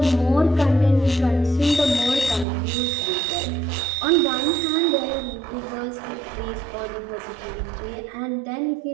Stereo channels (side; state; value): left; drops out; at 2.5 s